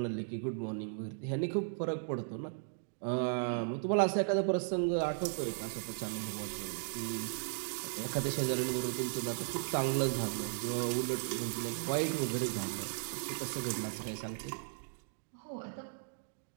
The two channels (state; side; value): silent; left; digital silence